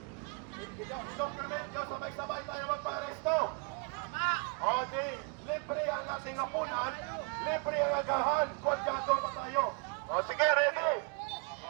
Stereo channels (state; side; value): quieter; left; 35.3 dB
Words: i-document nyo sabay-sabay tayo magpa-aresto. O di, libre ang ating apunan, libre ang agahan, kwadyato pa tayo. O sige, ready.